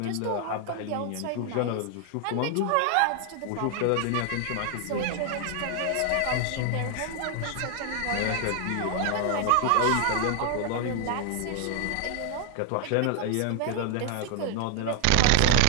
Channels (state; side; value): different; both; correlation 0.00